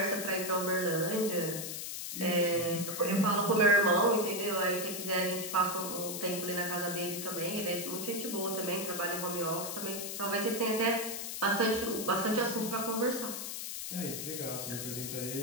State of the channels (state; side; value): noise; left; hiss, 5 dB below the sound